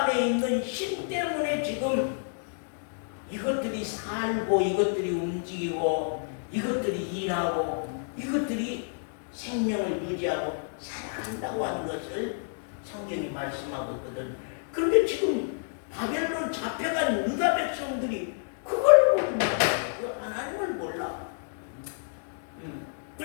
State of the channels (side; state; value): right; silent; digital silence